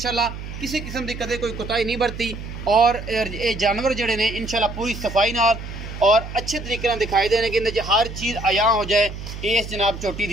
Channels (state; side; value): noise; right; hum, 10 dB below the sound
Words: किसी किस्म की कदे कोई कोताही नहीं बरती। और ये जानवर जड़े ने इंशाल्लाह पूरी सफाई नाल और अच्छे तरीके नाल दिखाई देने कि हर चीज़ आया हो जाए। इस जनाब चोटी